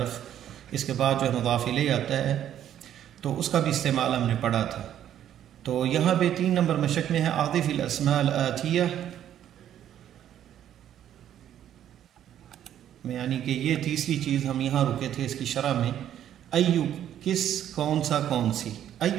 اس کے بعد جو ہے مضاف الیہ آتا ہے، تو اس کا بھی استعمال ہم نے پڑھا تھا۔ تو یہاں پہ 3 نمبر مشق میں ہے اعطف الاسماء الآتیہ، یعنی کہ یہ تیسری چیز ہم یہاں رکے تھے اس کی شرح میں۔ ایو کس، کون سا، کون سی۔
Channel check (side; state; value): left; quieter; 10.7 dB